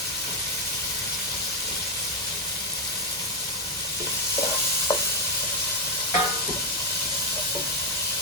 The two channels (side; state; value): both; normal; correlation 0.03